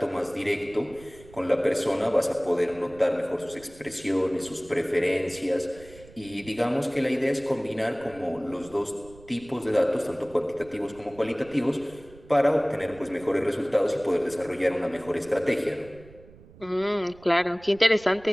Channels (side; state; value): right; noise; rumble, 22 dB below the sound